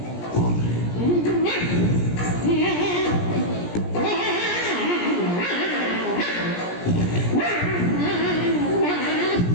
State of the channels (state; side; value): late; right; 17 ms